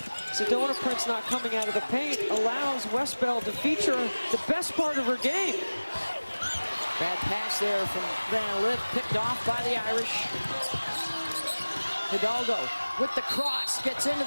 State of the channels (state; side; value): inverted; both; correlation -1.00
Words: Sedona Prince not coming out of the paint, allows Westbeld to feature the best part of her game. Bad pass there from Van Lith, picked off by the Irish. Hidalgo with the cross, gets into